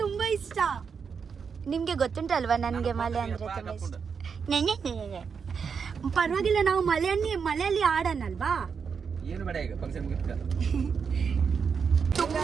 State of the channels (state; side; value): quieter; left; 6.1 dB